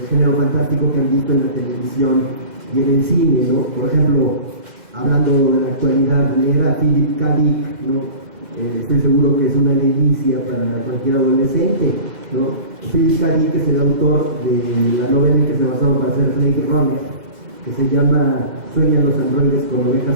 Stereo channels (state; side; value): late; left; 2.0 ms